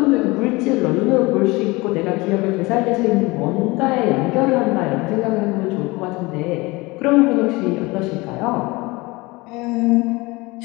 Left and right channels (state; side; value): quieter; right; 23.3 dB